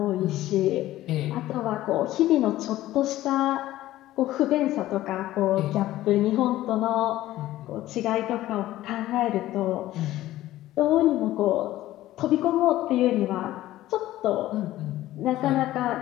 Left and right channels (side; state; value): right; quieter; 15.1 dB